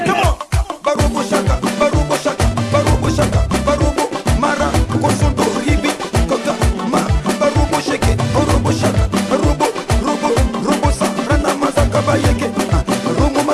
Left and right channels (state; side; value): identical; both; correlation 1.00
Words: Comment? Barobo shaka, barobo shaka, barobo shaka, barobo mara, kosondo ribi, kota ma, barobo shake, barobo shaka, barobo, robo, robo sa, rana masaka bayeke, romo